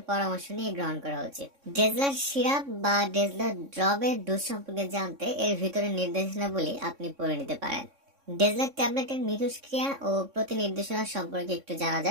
পরামর্শ নিয়ে গ্রহণ করা উচিত। ডেজলার সিরাপ বা ডেজলার ড্রপের ডোজ সম্পর্কে জানতে এর ভিতরে নির্দেশনাবলী আপনি পড়ে নিতে পারেন। ডেজলার ট্যাবলেটের মিথস্ক্রিয়া ও প্রতিনির্দেশনা সম্পর্কে একটু জানা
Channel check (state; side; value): late; left; 3.6 ms